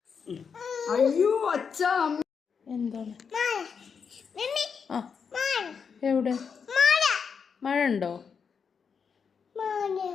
അയ്യോ അച്ഛ എന്താണ്? ആ എവിടെ മഴ ഉണ്ടോ?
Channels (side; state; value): right; quieter; 6.2 dB